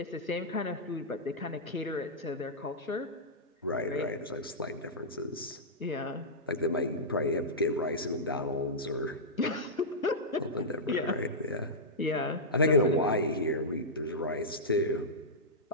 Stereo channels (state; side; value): normal; both; correlation -0.12